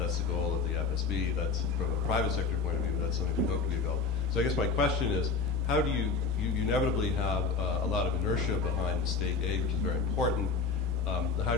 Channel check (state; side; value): quieter; right; 4.7 dB